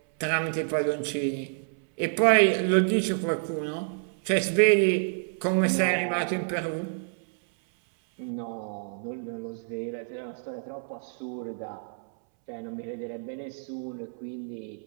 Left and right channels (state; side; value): silent; left; 59 dB below the other